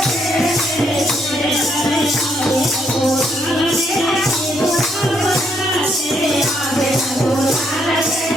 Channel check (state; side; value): normal; both; correlation 0.73